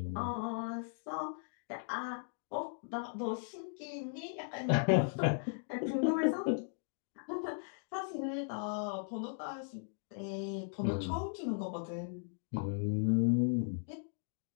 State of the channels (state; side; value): silent; right; digital silence